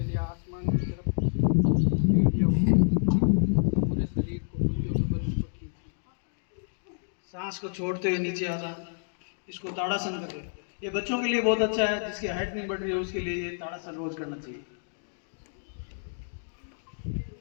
आसमान की तरफ, पूरे शरीर को सांस को छोड़ते हुए नीचे आता। इसको ताड़ासन करते हैं। ये बच्चों के लिए बहुत अच्छा है, जिसकी हाइट नहीं बढ़ रही है उसके लिए ये ताड़ासन रोज करना चाहिए।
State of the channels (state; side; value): silent; right; digital silence